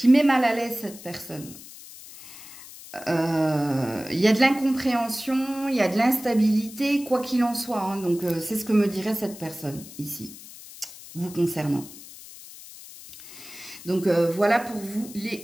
met mal à l'aise cette personne. Il y a de l'incompréhension, il y a de l'instabilité, quoi qu'il en soit. Hein. Donc, c'est ce que me dirait cette personne ici, vous concernant. Donc, voilà pour vous,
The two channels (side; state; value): left; noise; hiss, 16 dB below the sound